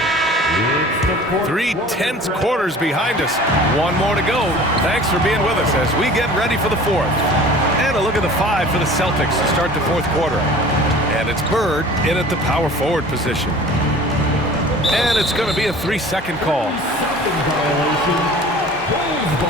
3 tense quarters behind us. One more to go. Thanks for being with us as we get ready for the fourth. And a look at the 5 for the Celtics to start the fourth quarter. And it's Bird in at the power forward position. And it's going to be a 3-second call. Second violation, Bulls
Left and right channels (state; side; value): normal; both; correlation 0.44